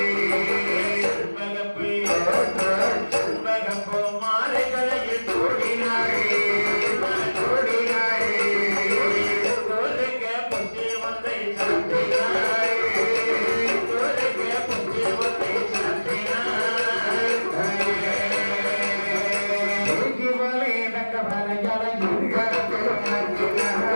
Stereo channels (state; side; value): inverted; both; correlation -1.00